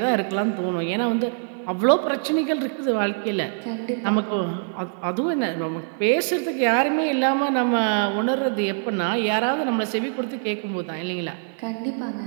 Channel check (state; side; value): silent; left; digital silence